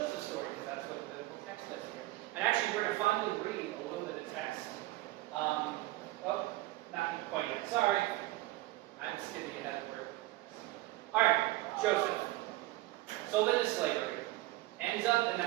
story, because that's what the text does here. And actually, we're going to finally read a little bit of text. Not quite yet. Sorry. I'm skipping ahead of where. All right, Joseph. Sold into slavery. Ends up in the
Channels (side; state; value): left; quieter; 18.5 dB